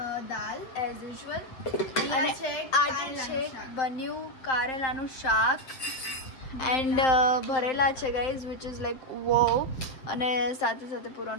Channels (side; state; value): right; late; 7.7 ms